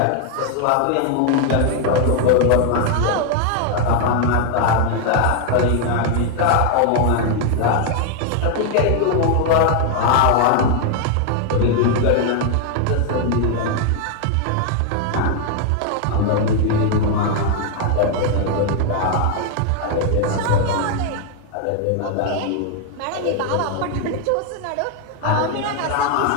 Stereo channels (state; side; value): different; both; correlation 0.00